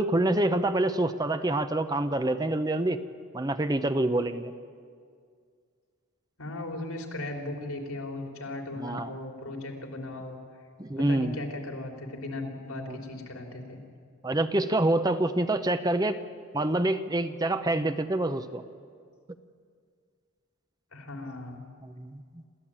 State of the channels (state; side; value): normal; both; correlation 0.67